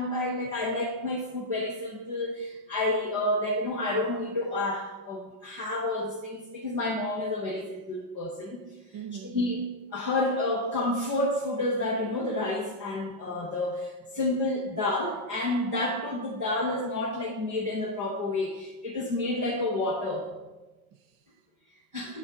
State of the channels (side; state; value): left; late; 4.9 ms